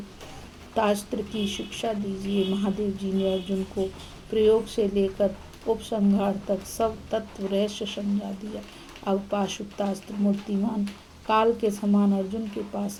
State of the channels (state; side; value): identical; both; correlation 1.00